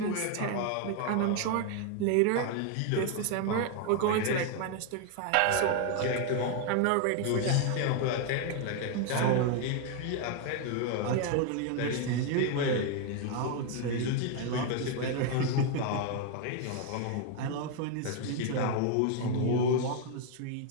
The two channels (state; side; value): different; both; correlation 0.01